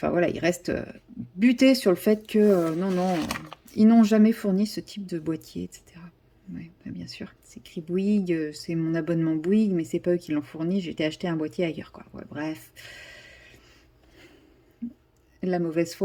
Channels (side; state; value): both; identical; correlation 1.00